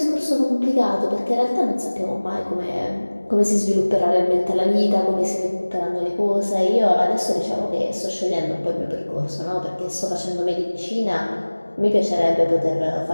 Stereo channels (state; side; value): inverted; both; correlation -1.00